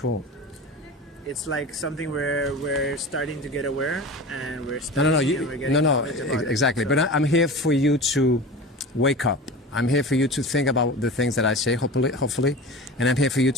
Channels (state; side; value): normal; both; correlation 0.33